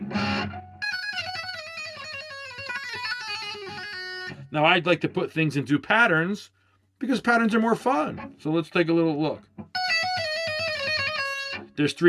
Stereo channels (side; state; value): both; identical; correlation 1.00